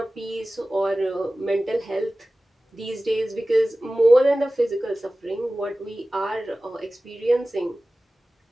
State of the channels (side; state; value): both; normal; correlation 0.96